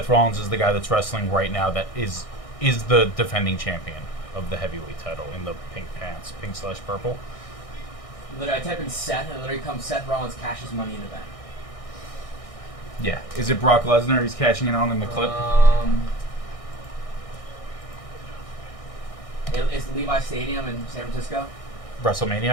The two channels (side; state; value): right; late; 1.6 ms